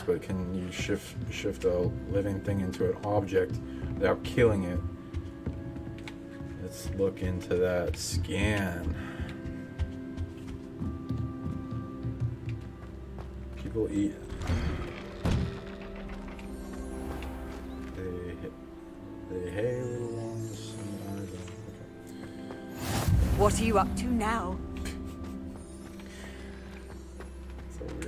but can you shift a living thing into an object without killing it? Let's look into that scan. People eat. They hay little ones. Okay. What are you up to now? It's a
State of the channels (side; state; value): both; identical; correlation 1.00